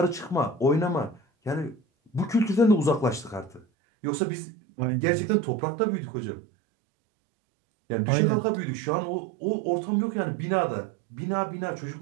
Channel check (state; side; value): drops out; left; at 3.7 s